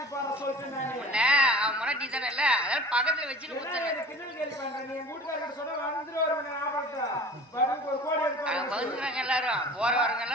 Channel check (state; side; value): normal; both; correlation 0.42